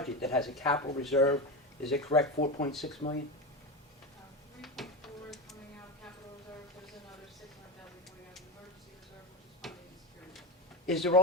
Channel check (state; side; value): normal; both; correlation 0.18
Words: that has a capital reserve, is it correct, 4.6 million? 3.4 is coming out of capital reserve, there's another 600,000 coming out of emergency reserve, which is funding and security. Is there